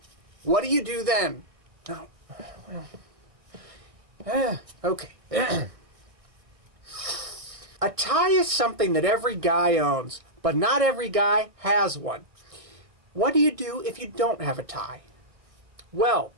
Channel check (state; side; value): late; left; 1.6 ms